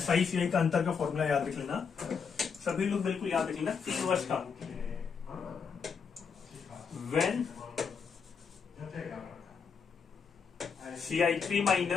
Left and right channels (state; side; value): quieter; right; 6.0 dB